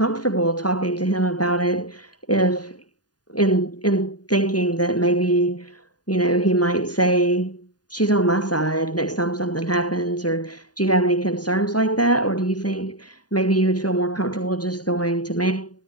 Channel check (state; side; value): late; right; 0.69 ms